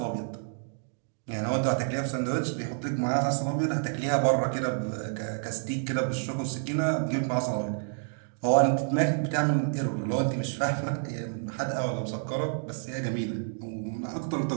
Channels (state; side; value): silent; left; digital silence